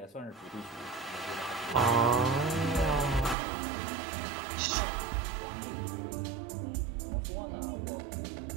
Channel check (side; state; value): left; drops out; at 3.4 s